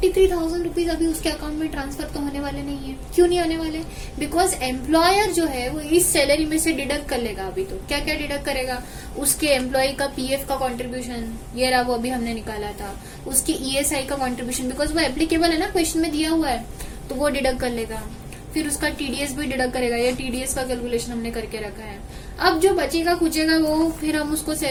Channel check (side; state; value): both; identical; correlation 1.00